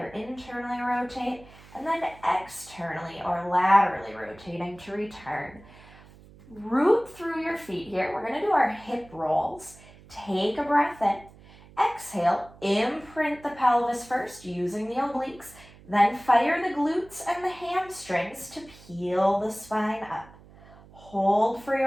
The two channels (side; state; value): right; noise; hum, 22 dB below the sound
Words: internally rotate, and then externally or laterally rotating to return. Root through your feet here. We're going to do our hip rolls. Take a breath in. Exhale, imprint the pelvis first using the obliques, then fire the glutes and the hamstrings to peel the spine up. Hold for